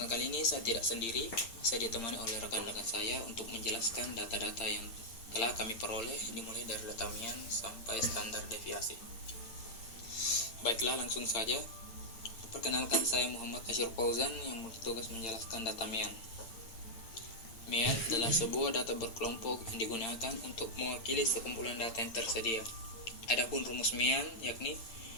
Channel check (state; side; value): late; right; 8.8 ms